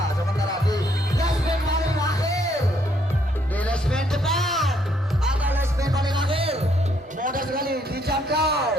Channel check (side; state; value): both; normal; correlation 0.70